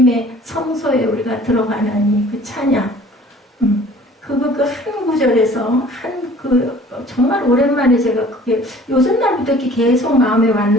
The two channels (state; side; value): normal; both; correlation 0.50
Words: 성소에 우리가 들어가는 그 찬양 그거 그 한 구절에서 정말 오랜만에 제가 그게 요즘 날부터 이렇게 계속 마음에